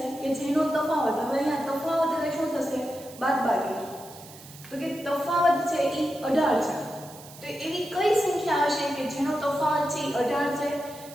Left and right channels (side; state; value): right; noise; hiss, 18 dB below the sound